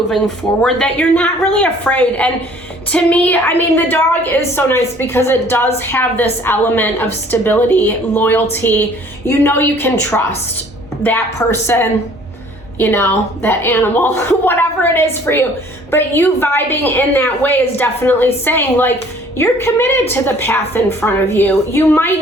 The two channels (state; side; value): normal; both; correlation 0.55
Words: forward, that you're not really afraid. And to me, the dog is so nice because it does have this element of stability, loyalty. You can trust that person, that animal, whatever it is for you. But you vibing in that way is definitely saying, like, you're committed to the path in front of you. You